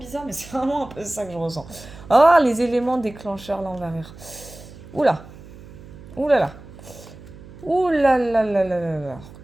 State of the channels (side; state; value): right; noise; hum, 18 dB below the sound